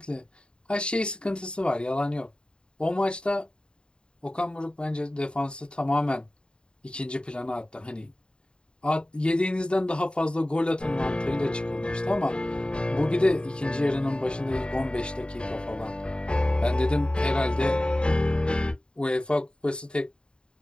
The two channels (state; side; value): late; right; 0.051 ms